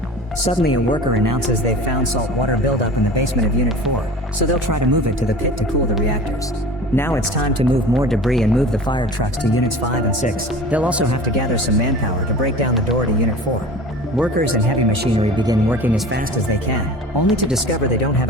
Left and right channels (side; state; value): both; normal; correlation 0.38